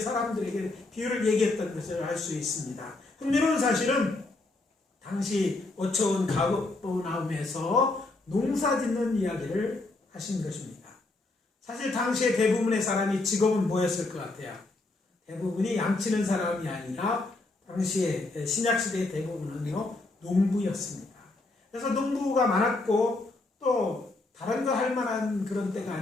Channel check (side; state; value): right; quieter; 3.1 dB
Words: 사람들에게 비유를 얘기했던 것을 알 수 있습니다. 흥미로운 사실은 당시 어처운 가버나움에서 농사 짓는 이야기를 하신 것입니다. 사실 당시에 대부분의 사람이 직업은 뭐였을 것 같아요? 대부분이 양치는 사람이 아니라 당시에 신약시대의 대부분은요, 농부였습니다. 그래서 농부가 많았고 또 다른 거 할 만한 그런 때가